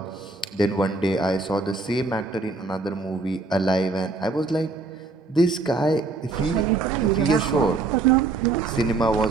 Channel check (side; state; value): left; quieter; 3.7 dB